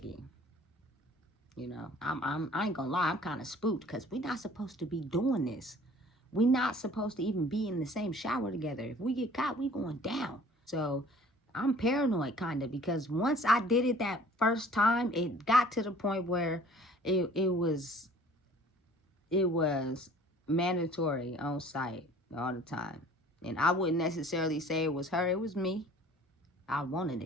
You know, I ain't gonna lie, I'm kind of spooked because we're not supposed to be doing this. We're not supposed to even be in the same shower together. If we get caught, we going down. So I'm paranoid kind of, because once I did it that first time, it got to the point where it was mandatory on site all the time. And I wouldn't necessarily say it was her, it was me. I wanted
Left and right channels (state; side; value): normal; both; correlation 0.51